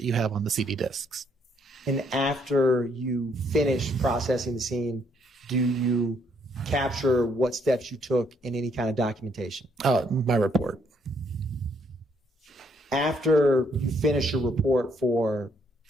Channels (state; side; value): normal; both; correlation 0.70